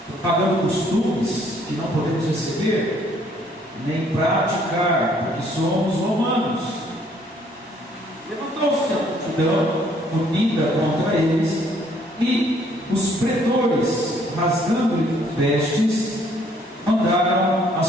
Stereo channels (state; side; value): normal; both; correlation 0.63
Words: propagando costumes que não podemos receber nem praticar, porque somos romanos. Levantou-se a multidão unida contra eles, e os pretores, rasgando-lhe vestes, mandaram